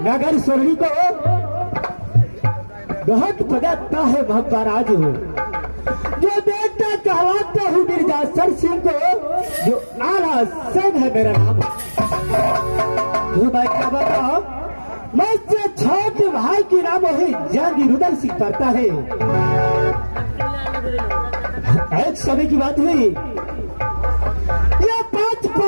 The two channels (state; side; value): inverted; both; correlation -1.00